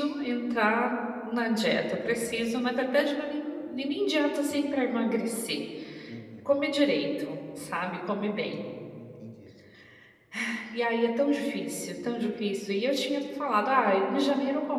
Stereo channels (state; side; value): identical; both; correlation 1.00